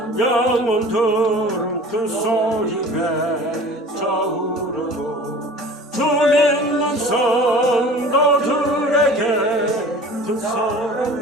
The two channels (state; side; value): normal; both; correlation 0.42